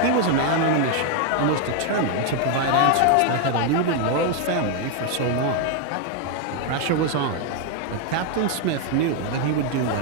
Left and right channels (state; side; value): different; both; correlation 0.00